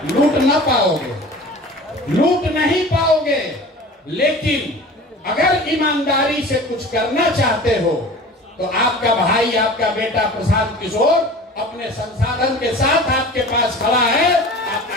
लूट न पाओगे, लूट नहीं पाओगे, लेकिन अगर ईमानदारी से कुछ करना चाहते हो तो आपका भाई, आपका बेटा प्रशांत किशोर अपने संसाधन के साथ आपके पास खड़ा है। आप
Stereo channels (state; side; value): normal; both; correlation 0.39